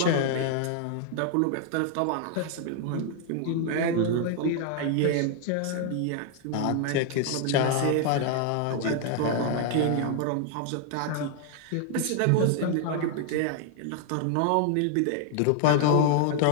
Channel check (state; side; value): different; both; correlation 0.00